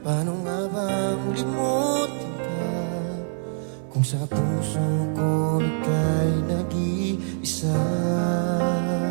paano nga bang limutin ka kung sa puso ko ika'y nag-iisa?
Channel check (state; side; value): silent; left; digital silence